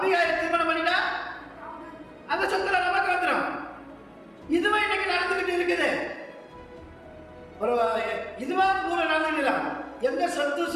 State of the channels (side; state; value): both; identical; correlation 1.00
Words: திருமணம் பண்ணிட்டா அந்த சொத்துல நமக்கு வந்துடும். இதுவே இன்னைக்கு நடந்துகிட்டு இருக்குது. ஒரு இதுவா ஊர நடந்துடல, எந்த சொத்து